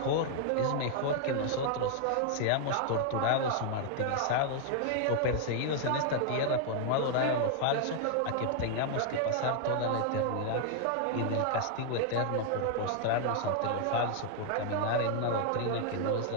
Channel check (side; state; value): both; different; correlation 0.00